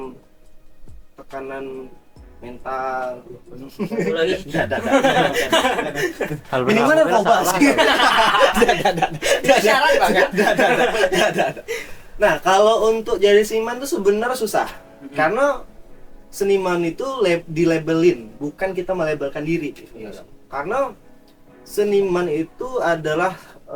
tekanan mental. Lagi. Minimal narkoba sih. Syarat banget. Nah, kalau untuk jadi seniman tuh sebenarnya susah. Karena seniman itu dilabelin, bukan kita melabelkan diri. Karena seniman itu adalah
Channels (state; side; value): identical; both; correlation 1.00